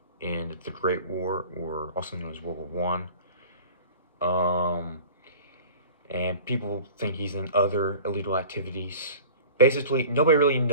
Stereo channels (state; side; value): inverted; both; correlation -0.42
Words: in the Great War, or also known as World War I. And people think he's in other illegal activities. Basically, nobody really